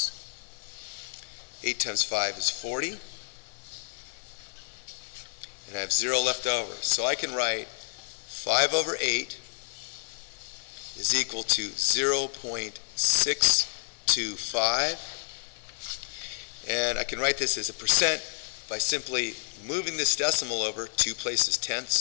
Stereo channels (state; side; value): silent; right; digital silence